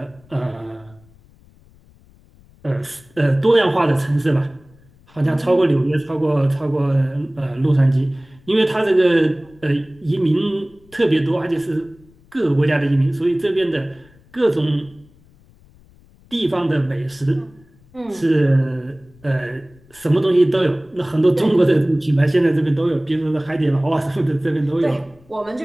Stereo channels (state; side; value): noise; left; rumble, 28 dB below the sound